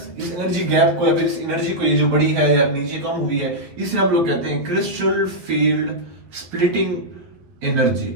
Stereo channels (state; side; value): late; left; 12 ms